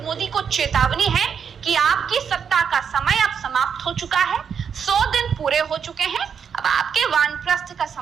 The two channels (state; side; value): quieter; left; 7.1 dB